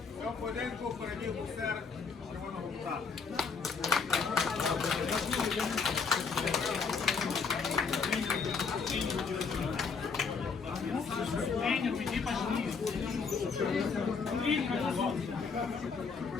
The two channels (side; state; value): right; quieter; 5.3 dB